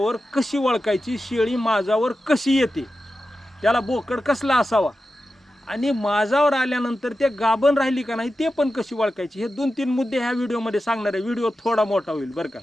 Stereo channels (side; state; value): both; normal; correlation 0.92